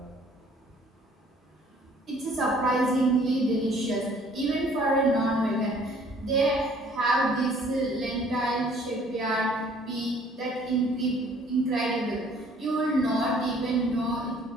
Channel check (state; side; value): normal; both; correlation 0.57